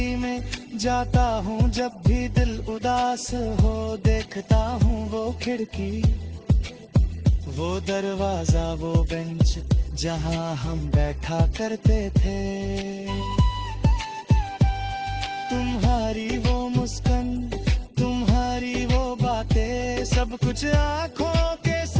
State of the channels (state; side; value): identical; both; correlation 1.00